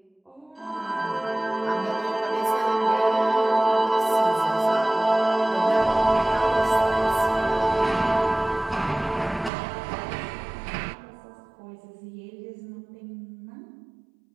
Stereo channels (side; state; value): left; drops out; at 9.5 s